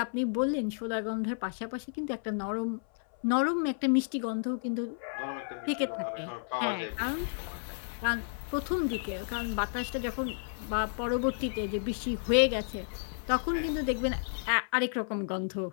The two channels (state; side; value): silent; right; 57 dB below the other